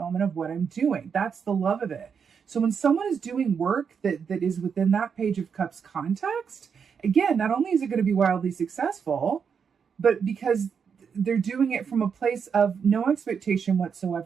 of what I'm doing. That's the love of it. So when someone is doing work that is within that Page of Cups context, again, not only is it going to be wildly successful, but because they're doing it from a place of no expectation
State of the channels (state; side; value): quieter; left; 6.6 dB